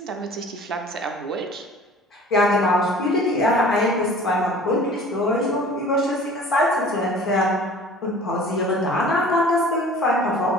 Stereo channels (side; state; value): both; normal; correlation 0.46